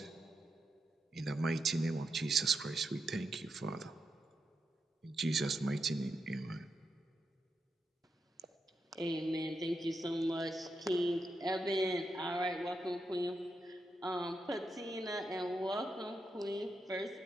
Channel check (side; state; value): both; normal; correlation 0.85